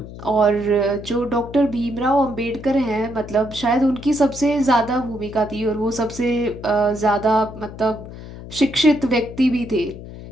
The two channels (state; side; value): noise; left; hum, 13 dB below the sound